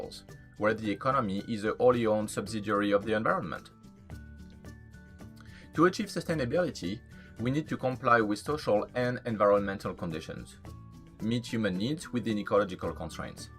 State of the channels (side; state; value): both; identical; correlation 1.00